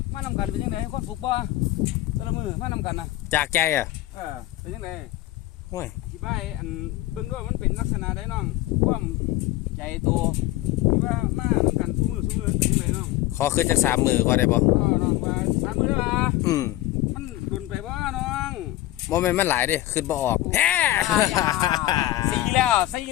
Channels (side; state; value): right; quieter; 16.0 dB